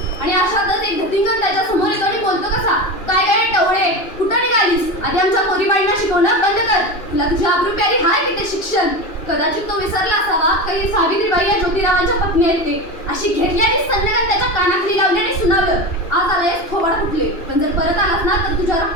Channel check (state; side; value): late; right; 2.9 ms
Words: अशातच एक धतिंगण त्याच्या समोर येतो आणि बोलतो कसा, काय टवळे, कुठं निघालीस? आधी आमच्या पोरीबाळींना शिकवणं बंद कर. तुला तुझी आबरू प्यारी हाय की ते शिक्षण? कदाचित तो विसरला असावा काही सावित्रीबाई या ज्योतिरावांच्या पत्नी आहेत ते. अशी घेतली आणि सन्नगत त्याच्या कानाखाली लावली आणि सुनावलं, आज आलायस थोबाड फुटले, पण जर परत आलास ना तर तुझ्या